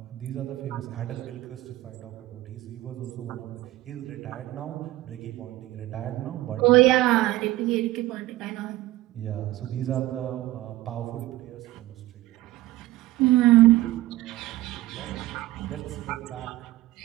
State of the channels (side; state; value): left; quieter; 17.0 dB